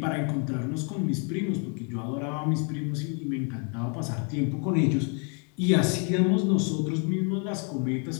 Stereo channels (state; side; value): quieter; right; 38.4 dB